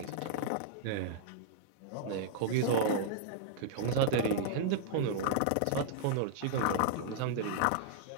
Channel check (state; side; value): different; both; correlation -0.01